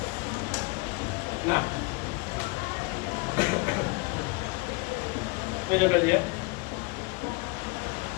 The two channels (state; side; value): quieter; right; 26.9 dB